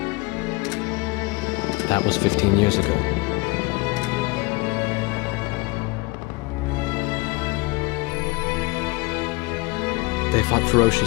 That was 15 years ago. They fought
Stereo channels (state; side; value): quieter; right; 24.8 dB